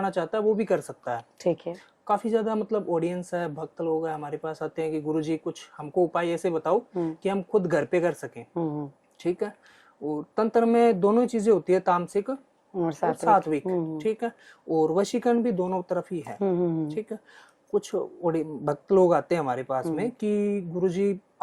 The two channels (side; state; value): both; identical; correlation 1.00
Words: चाहता है वो भी कर सकता है। ठीक है। काफी ज्यादा मतलब ऑडियंस है, भक्त लोग है हमारे पास आते हैं कि गुरुजी कुछ हमको उपाय ऐसे बताओ कि हम खुद घर पे कर सकें। ठीक है। और तंत्र में दोनों चीजें होती है, तामसिक और सात्विक। ठीक है। और वशीकरण भी दोनों तरफ ही है। ठीक है। कुछ भक्त लोग आते हैं हमारे पास में कि गुरुजी